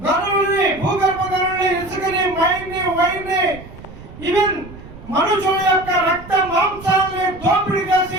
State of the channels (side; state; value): right; noise; rumble, 17 dB below the sound